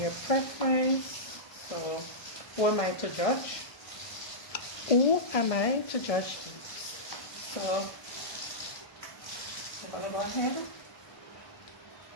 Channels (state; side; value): late; right; 1.6 ms